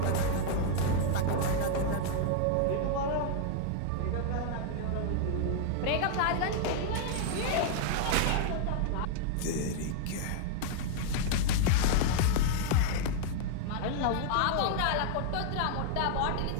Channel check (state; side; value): different; both; correlation -0.01